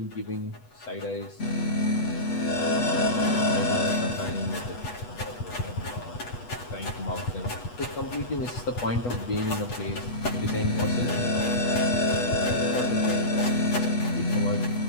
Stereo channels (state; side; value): late; right; 8.2 ms